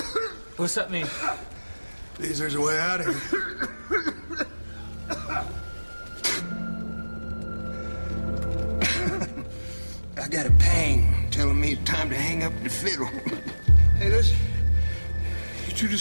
What's that mean? Means there's a way out of here. I got a pang telling me it's time to hang up the fiddle. Hey, listen. You two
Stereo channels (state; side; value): inverted; both; correlation -1.00